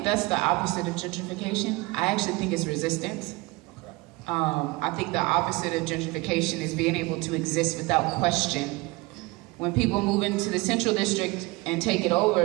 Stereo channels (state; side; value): quieter; left; 23.5 dB